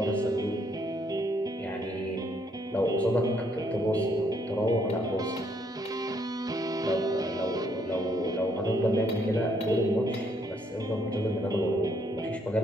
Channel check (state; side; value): normal; both; correlation 0.70